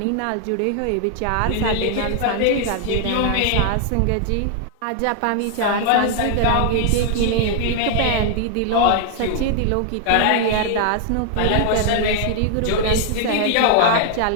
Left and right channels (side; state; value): both; different; correlation 0.00